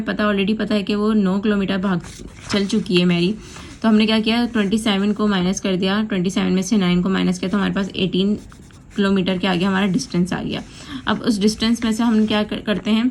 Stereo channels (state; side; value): identical; both; correlation 1.00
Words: ऑलरेडी पता है कि वो 9 किलोमीटर भाग चल चुकी है मैरी। तो हमने क्या किया, 27 को माइनस कर दिया, 27 में से 9 को माइनस किया, तो हमारे पास 18 किलोमीटर के आगे हमारा डिस्टेंस आ गया। अब उस डिस्टेंस में से हम क्या करते हैं,